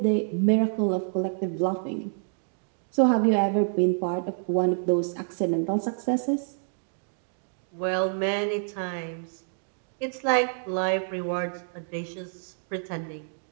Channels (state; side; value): silent; left; digital silence